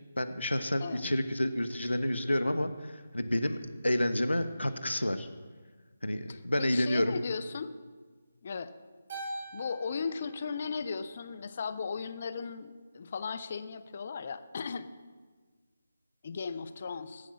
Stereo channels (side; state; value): both; inverted; correlation -0.93